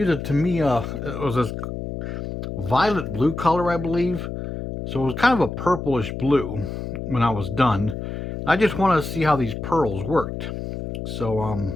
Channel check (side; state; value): left; noise; hum, 6 dB below the sound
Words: a Tamiya, it was this violet blue color, I believe. So it was kind of a purplish blue when I was done. I just wanted to see how these pearls worked. So I